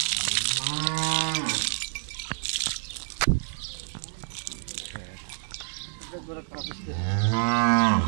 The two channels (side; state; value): left; silent; digital silence